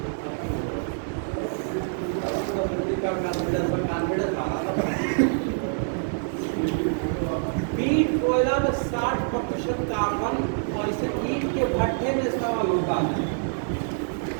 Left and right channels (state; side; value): silent; left; 61 dB below the other